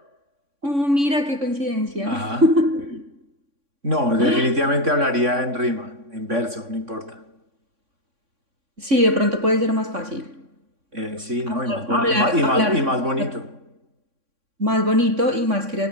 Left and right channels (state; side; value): late; left; 3.6 ms